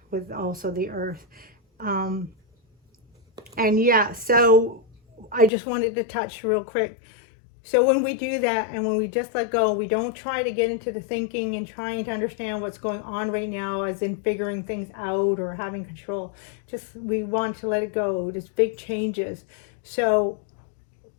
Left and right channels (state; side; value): drops out; right; at 5.5 s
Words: with also the earth. And yeah, so I just wanted to touch real quick. So when we do that and when we just let go, we don't try to get into the thinking and trying to understand what's going on right now, as in figuring things out or having control. Just, we want to let it go. There's big changes. So